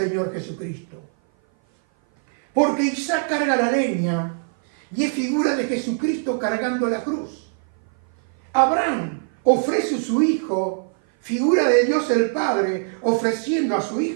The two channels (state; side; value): silent; left; 56 dB below the other